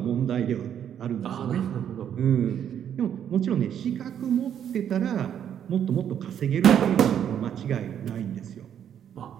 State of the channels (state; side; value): quieter; left; 9.3 dB